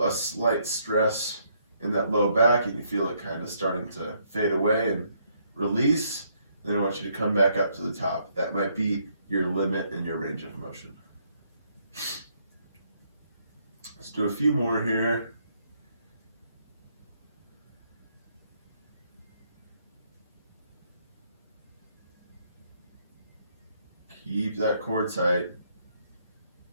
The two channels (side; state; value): both; inverted; correlation -0.71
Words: a slight stress in that low back and you feel it kind of starting to fade away and release, then I want you to come back up to the top. That might be your limit in your range of motion. Let's do a few more here. Keep that core tight.